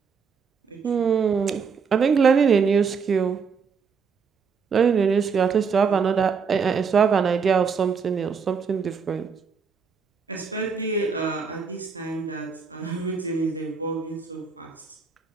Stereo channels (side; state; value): left; quieter; 5.9 dB